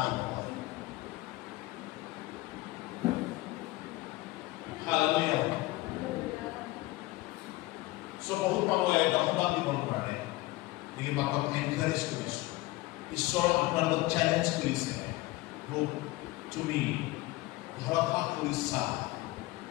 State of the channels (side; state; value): right; quieter; 19.5 dB